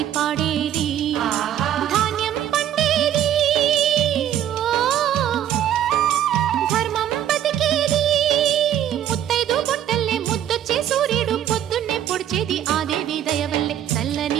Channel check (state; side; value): quieter; left; 10.7 dB